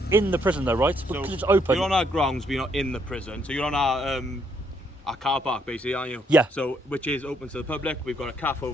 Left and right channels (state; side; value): normal; both; correlation 0.72